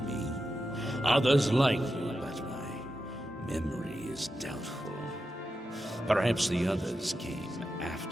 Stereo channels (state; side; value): normal; both; correlation 0.89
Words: Others like you, but my memory is doubtful. Perhaps the others came